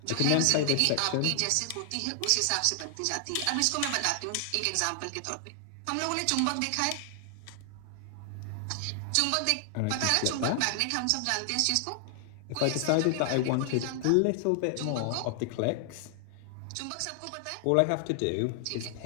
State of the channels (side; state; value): both; different; correlation 0.00